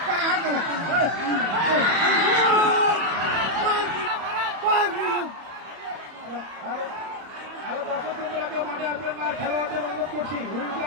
দর্শক বন্ধুরা কেউ মাঠে আসবেন না, খেলোয়াড়দের অনুরোধ করছি,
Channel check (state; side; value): late; left; 31 ms